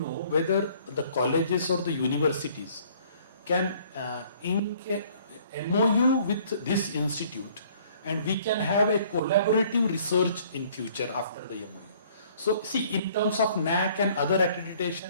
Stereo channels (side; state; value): both; inverted; correlation -0.58